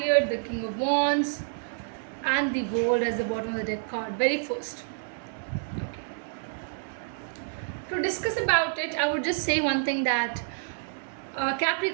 the King of Wands, and the World as the bottom of the deck card, very first. Okay. To discuss about it, I would just say one thing, that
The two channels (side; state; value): left; silent; digital silence